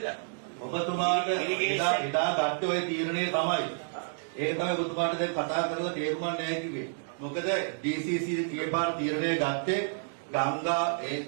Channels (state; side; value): silent; left; digital silence